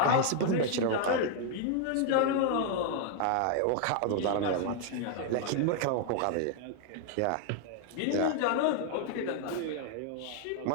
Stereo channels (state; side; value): different; both; correlation 0.00